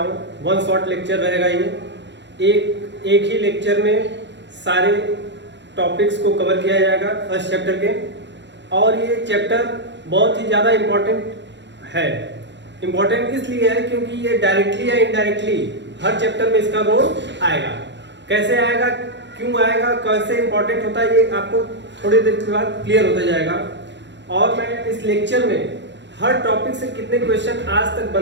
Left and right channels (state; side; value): late; left; 0.52 ms